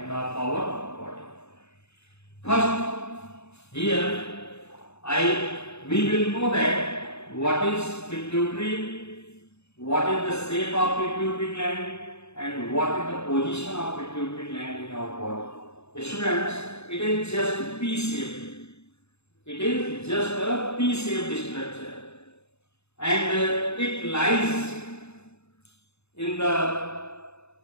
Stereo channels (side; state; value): right; late; 0.80 ms